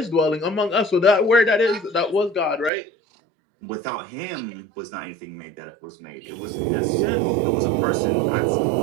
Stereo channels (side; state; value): left; drops out; at 2.7 s